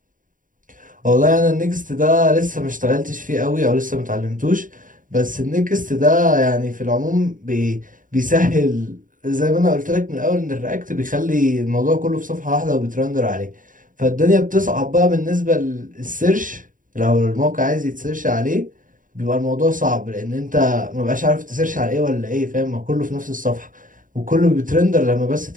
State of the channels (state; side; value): late; left; 0.39 ms